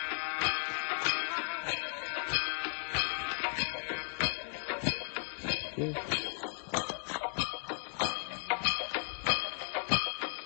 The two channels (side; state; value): right; silent; digital silence